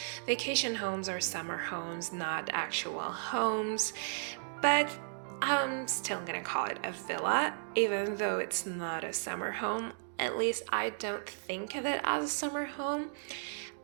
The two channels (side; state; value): left; silent; digital silence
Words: vacation homes or summer homes, not actual homes, but I'm still gonna call it a villa, even though it's not a summer home. At least I don't think of it as a summer home.